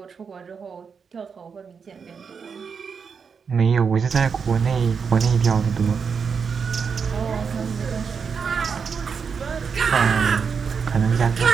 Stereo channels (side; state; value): left; quieter; 6.0 dB